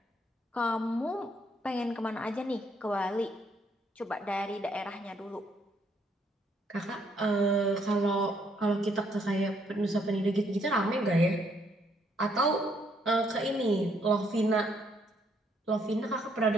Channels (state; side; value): normal; both; correlation 0.70